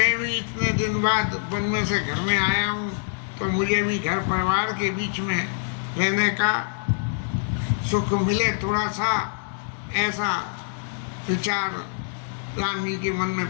भी इतने दिन बाद वन में से घर में आया हूँ, तो मुझे भी घर परिवार के बीच में रहने का सुख मिले थोड़ा सा, ऐसा विचार राम जी के मन में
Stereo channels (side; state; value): right; silent; digital silence